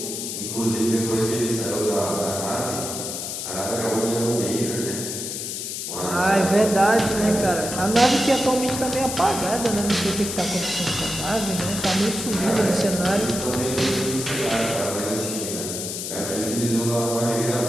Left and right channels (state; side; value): noise; left; hiss, 5 dB below the sound